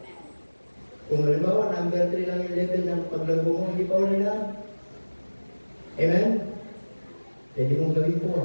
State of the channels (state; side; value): inverted; both; correlation -1.00